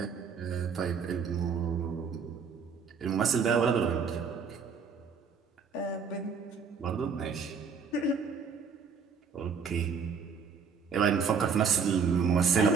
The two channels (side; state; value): left; quieter; 5.9 dB